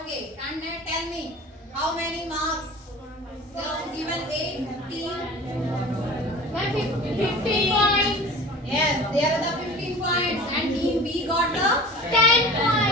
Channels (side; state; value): both; normal; correlation 0.40